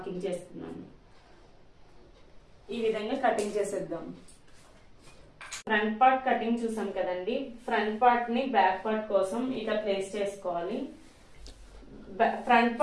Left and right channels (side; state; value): both; identical; correlation 1.00